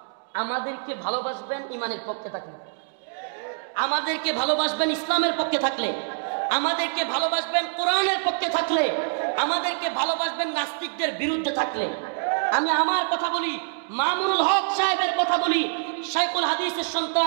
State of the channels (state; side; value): silent; left; digital silence